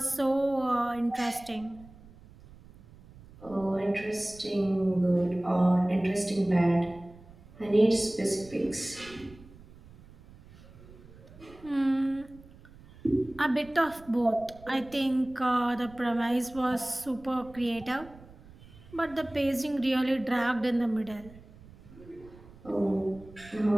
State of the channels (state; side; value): noise; right; rumble, 22 dB below the sound